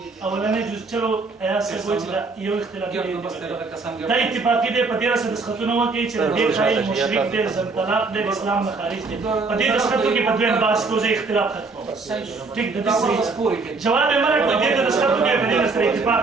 جزء چلو ایاسه کوئی چې یو اختلاف دی دا اتفاقی دی په دې سره د خطونه وکړي چې د خایل مشرک دی زم طلاق دی اسلام نه خارج دی په دې خطو کې په دویم باس کوزه اختلاف ختم ټیک د دې جواب یې مرګ په دې د خطو کې په دې سره اتفاق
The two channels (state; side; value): quieter; left; 4.0 dB